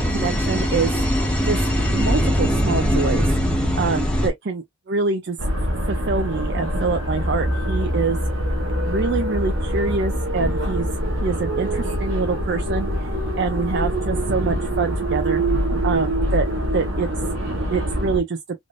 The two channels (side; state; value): both; normal; correlation 0.49